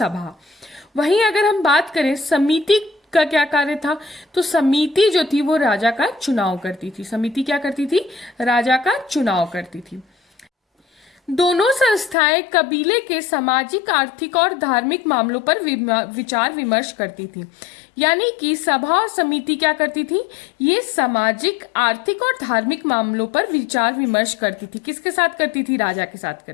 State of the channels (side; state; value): right; drops out; at 12.2 s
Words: वहीं अगर हम बात करें समिति का क्या कार्य था, तो समिति जो थी वो राजा का चुनाव करती थी। समिति क्या करती थी? राजा का चुनाव करती थी। दोनों संस्थाएं कबीले के सामाजिक, आर्थिक और धार्मिक मामलों पर विचार विमर्श करती थी। यानी कि सभा और समिति क्या करती थी? ये सामाजिक, आर्थिक और धार्मिक मामलों पर विचार विमर्श करती थी। किसके साथ करती थी? राजा के साथ